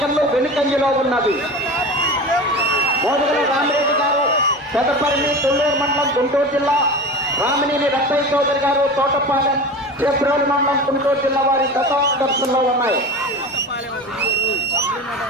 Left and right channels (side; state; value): both; normal; correlation 0.31